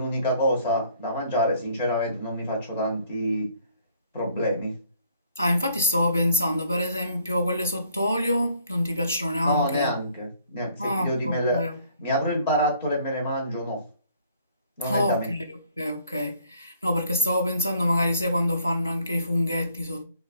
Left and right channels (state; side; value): inverted; both; correlation -0.62